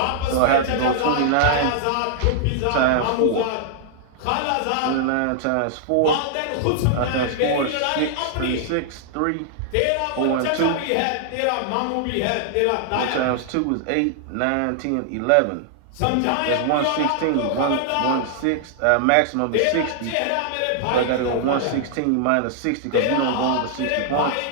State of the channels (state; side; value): different; both; correlation -0.01